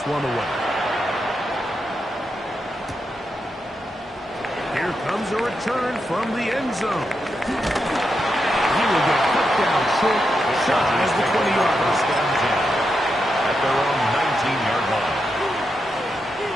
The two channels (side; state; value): both; normal; correlation 0.85